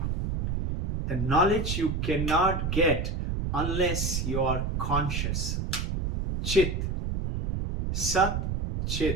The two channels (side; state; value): right; noise; rumble, 1 dB below the sound